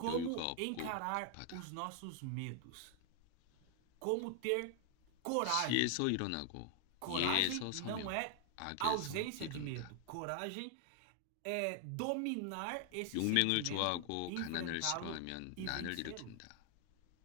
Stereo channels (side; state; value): both; different; correlation 0.00